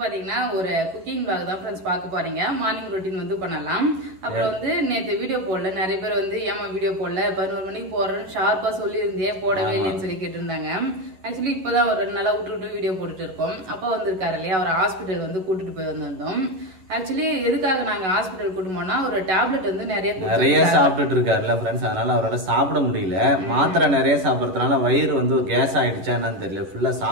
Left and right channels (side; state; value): left; late; 11 ms